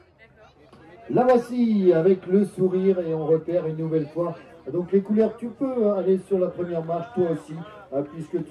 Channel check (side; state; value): both; identical; correlation 1.00